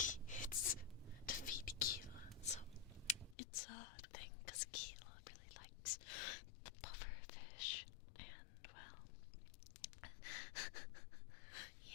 it's to feed Keela, so it's a thing because Keela really likes the pufferfish, and well,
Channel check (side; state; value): right; drops out; at 3.4 s